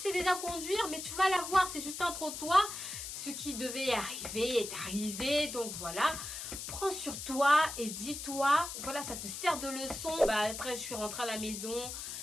déjà conduire, mais tu vas la voir. C'est juste un trottoir. Ce qui devait arriver est arrivé. Donc voilà. Prends sur toi et dis-toi. Voilà, ça te sert de leçon. Bah, après, je suis rentrée à la maison.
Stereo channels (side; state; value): left; noise; hiss, 7 dB below the sound